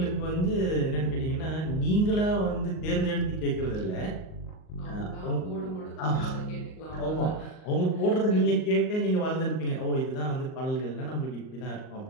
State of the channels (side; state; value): right; late; 38 ms